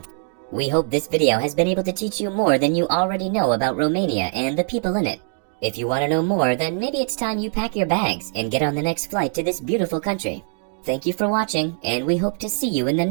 We hope this video has been able to teach you more than you already know about Romania and the people in it. If you want to know more, then maybe it's time you pack your bags and get on the next flight to this beautiful country. Thank you for watching, and we hope to see you in the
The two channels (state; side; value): silent; left; 56 dB below the other